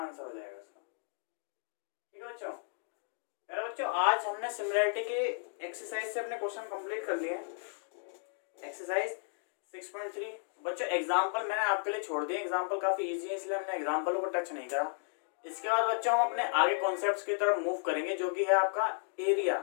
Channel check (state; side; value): silent; right; 55 dB below the other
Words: हो जाएगा इसका। ठीक है बच्चों। मेरा बच्चों आज हमने सिमिलरिटी के एक्सरसाइज से अपने क्वेश्चन कंप्लीट कर लिए हैं। एक्सरसाइज 6.3 बच्चों एग्जांपल मैंने आपके लिए छोड़ दिए, एग्जांपल काफी इजी है इसलिए हमने एग्जांपल को टच नहीं करा। इसके बाद बच्चों हम अपने आगे कॉन्सेप्ट्स की तरफ मूव करेंगे जो कि है आपका एरिया